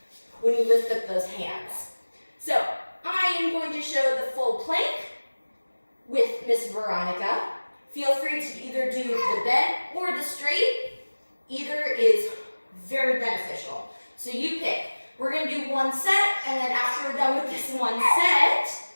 up those hands. So I am going to show the full plank with Miss Veronica. Feel free to either do the bent or the straight. Either is very beneficial. So you pick. We're going to do 1 set, and then after we're done with this 1 set,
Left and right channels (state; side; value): inverted; both; correlation -1.00